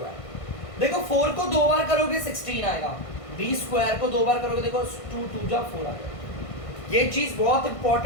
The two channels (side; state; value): right; late; 1.5 ms